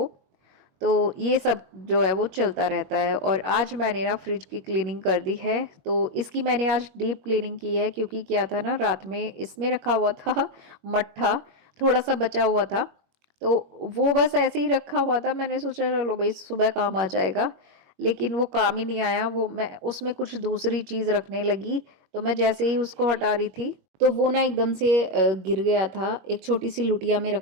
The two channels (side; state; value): left; late; 21 ms